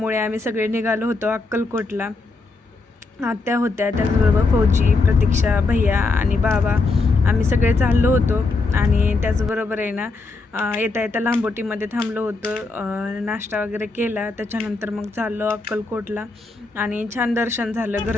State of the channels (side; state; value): right; quieter; 3.7 dB